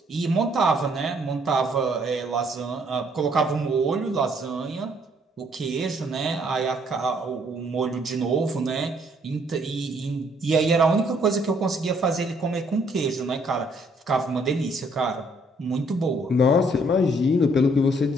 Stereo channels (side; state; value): both; normal; correlation 0.66